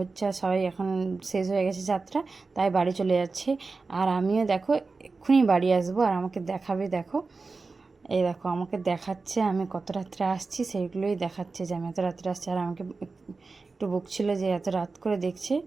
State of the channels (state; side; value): quieter; left; 4.0 dB